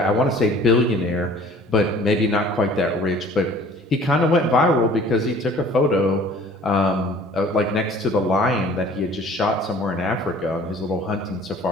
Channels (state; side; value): normal; both; correlation 0.50